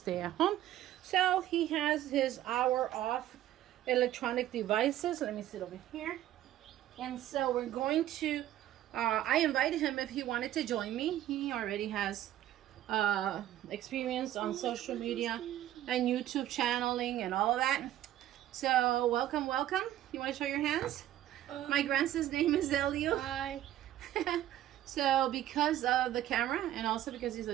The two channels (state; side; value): quieter; left; 12.9 dB